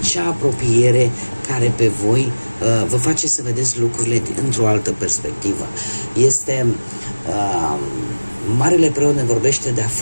apropiere care pe voi vă face să vedeți lucrurile într-o altă perspectivă. Este Marele Preot ne vorbește de a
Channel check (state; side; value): inverted; both; correlation -1.00